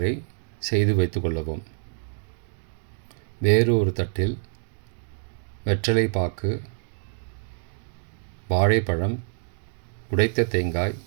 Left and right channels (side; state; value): left; silent; digital silence